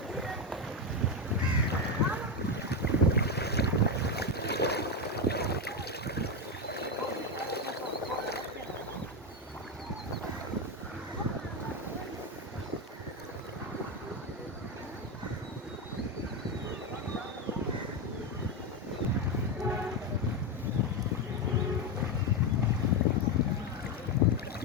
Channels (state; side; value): normal; both; correlation 0.10